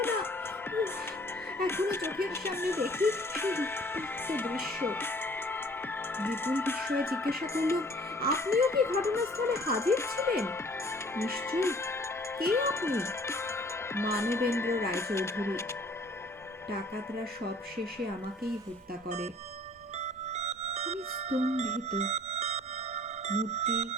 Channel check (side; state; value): both; normal; correlation 0.54